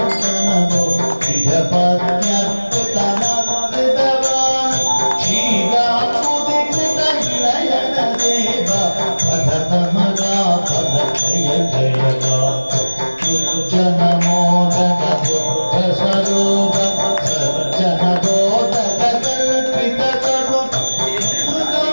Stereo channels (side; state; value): both; inverted; correlation -1.00